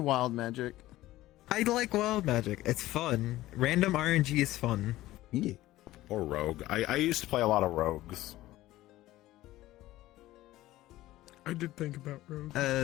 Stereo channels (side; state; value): right; quieter; 16.2 dB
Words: wild magic. I like Wild Magic. It's fun. Random RNG is fun. Yeah. Or rogue. I used to play a lot of rogues. I did think about rogue.